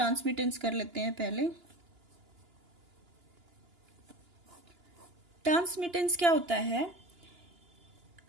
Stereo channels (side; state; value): left; late; 2.9 ms